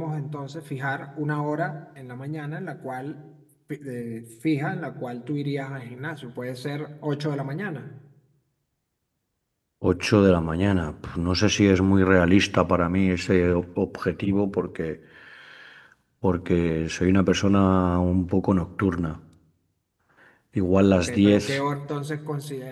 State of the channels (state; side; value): identical; both; correlation 1.00